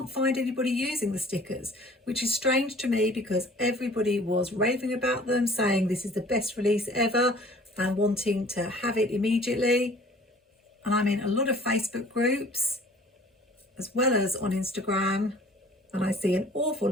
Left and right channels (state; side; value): normal; both; correlation 0.51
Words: find anybody using the stickers, which is strange to me because everybody was raving about them, saying this is the best release ever and wanting to have it immediately. And I'm in a lot of Facebook groups as well as on Instagram, and I see an awful